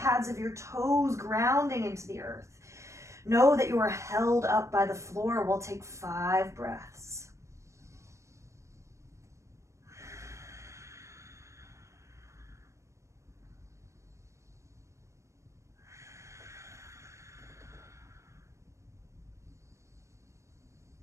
of your toes grounding into the earth. Know that you are held up by the floor. We'll take 5 breaths.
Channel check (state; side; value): late; left; 0.14 ms